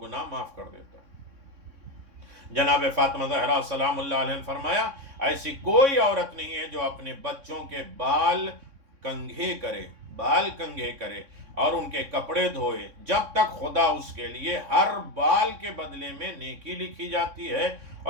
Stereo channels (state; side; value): late; left; 3.6 ms